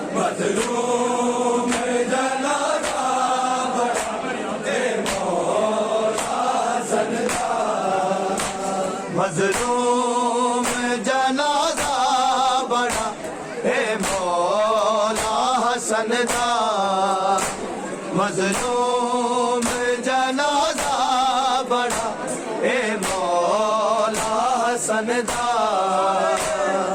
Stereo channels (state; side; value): identical; both; correlation 1.00